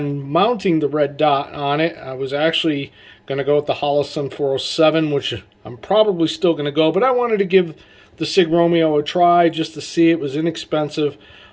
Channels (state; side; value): identical; both; correlation 1.00